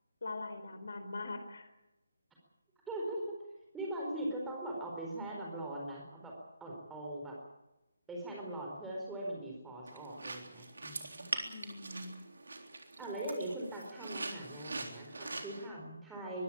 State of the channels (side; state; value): both; inverted; correlation -0.70